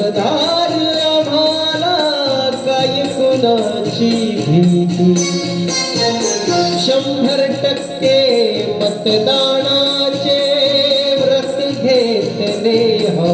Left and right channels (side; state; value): both; identical; correlation 1.00